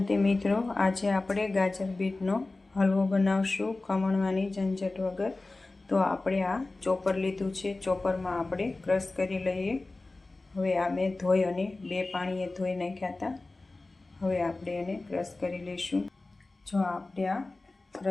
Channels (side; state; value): right; quieter; 3.2 dB